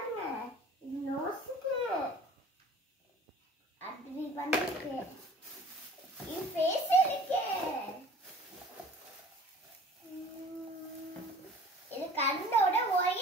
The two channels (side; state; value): both; normal; correlation 0.47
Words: இது நோஸ்க்கு அப்படி பண்ணிருக்கு இது ஃபேஸ் இருக்கு இது கண்ணோட